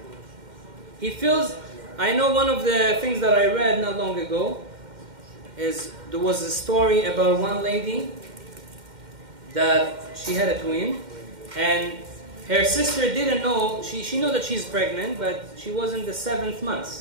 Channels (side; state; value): left; late; 2.1 ms